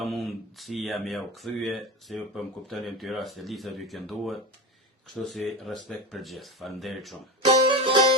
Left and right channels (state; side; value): normal; both; correlation 0.22